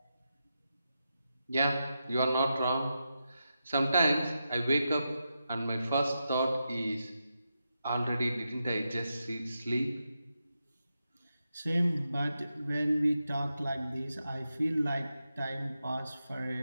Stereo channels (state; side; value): inverted; both; correlation -0.88